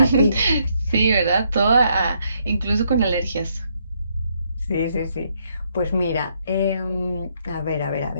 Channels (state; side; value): inverted; both; correlation -0.73